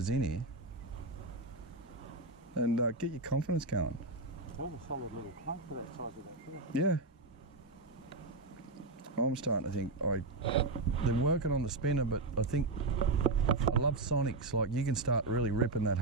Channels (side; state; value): left; quieter; 3.2 dB